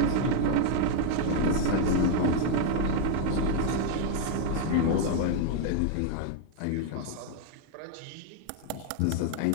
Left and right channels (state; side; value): different; both; correlation 0.00